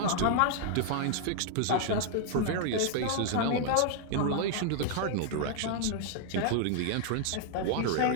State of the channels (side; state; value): both; different; correlation 0.00